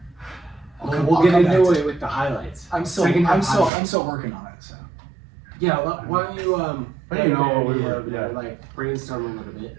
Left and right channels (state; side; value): drops out; left; at 3.7 s